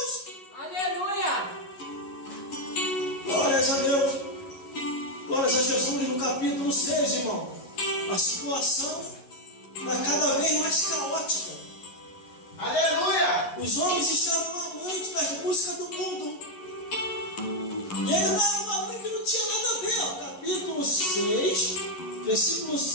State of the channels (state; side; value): late; right; 11 ms